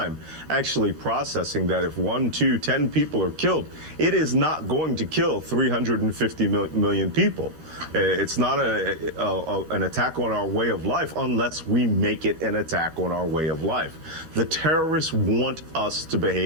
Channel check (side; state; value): left; late; 12 ms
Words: actually processing that if 1, 2, 10 people are killed, it is not going to kill 350 million people. It's not an attack on our way of life unless we make it an attack on our way of life. The terrorists want us to